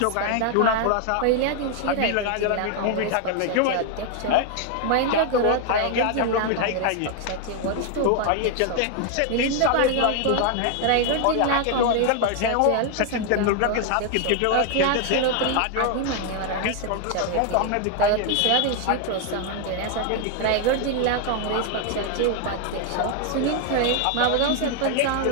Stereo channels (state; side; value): different; both; correlation 0.01